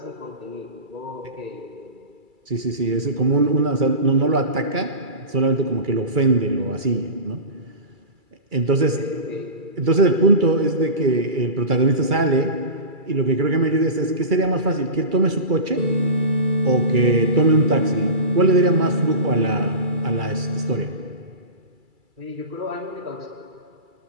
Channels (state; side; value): late; left; 2.3 ms